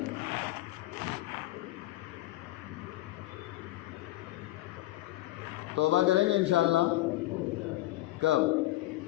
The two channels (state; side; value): quieter; right; 17.1 dB